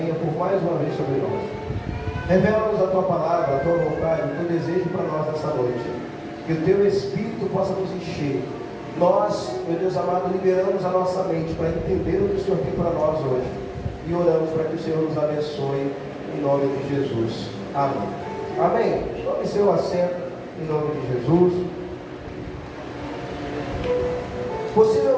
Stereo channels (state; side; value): identical; both; correlation 1.00